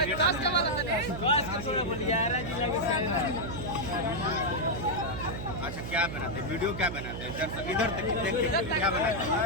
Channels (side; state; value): right; noise; hum, 7 dB below the sound